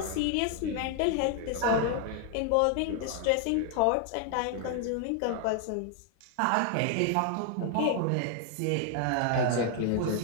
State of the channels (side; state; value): both; different; correlation 0.00